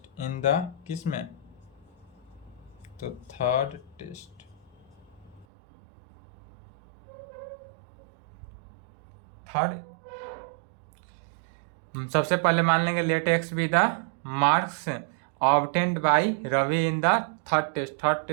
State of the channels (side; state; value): left; drops out; at 5.5 s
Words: in the किस में, तो थर्ड टेस्ट। सबसे पहले मान लेंगे let x be the marks obtained by Ravi in the third